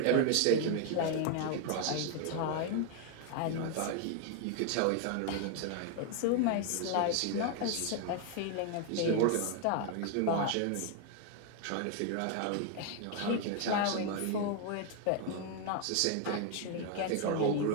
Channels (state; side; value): different; both; correlation 0.00